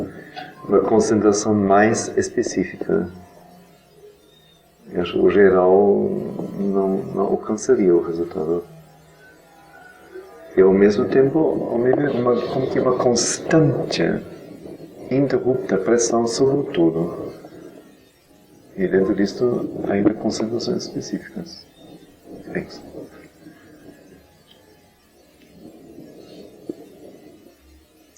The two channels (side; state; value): both; identical; correlation 1.00